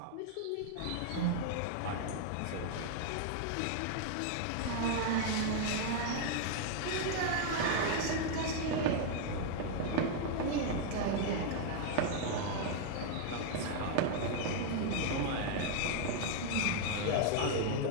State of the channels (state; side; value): different; both; correlation 0.00